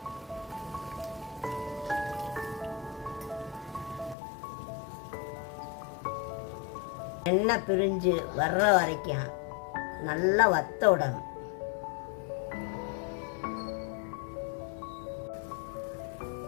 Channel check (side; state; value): right; drops out; at 4.2 s